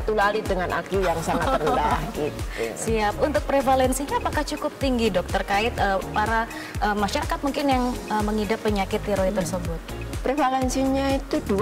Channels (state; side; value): identical; both; correlation 1.00